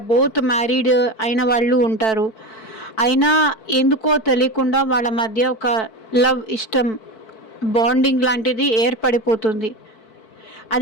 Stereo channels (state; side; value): late; right; 4.6 ms